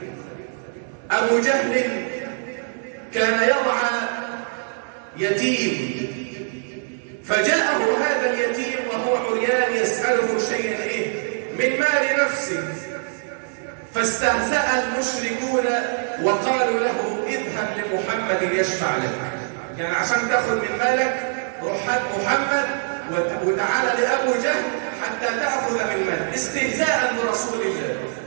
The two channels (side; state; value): left; silent; digital silence